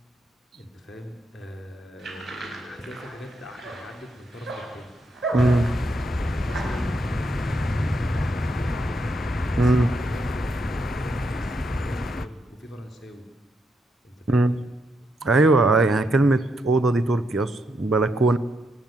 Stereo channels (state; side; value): normal; both; correlation 0.79